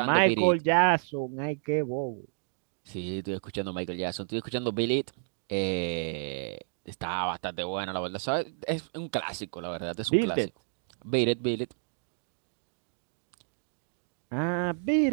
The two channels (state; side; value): silent; left; digital silence